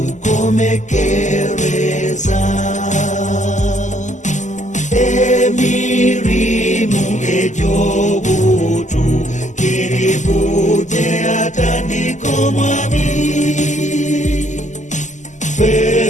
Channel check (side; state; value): right; late; 0.35 ms